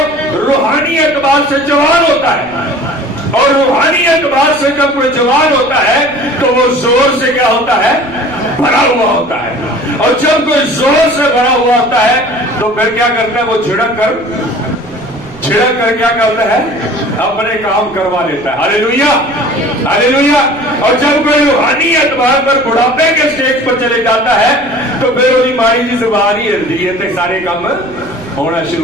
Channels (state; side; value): noise; right; rumble, 22 dB below the sound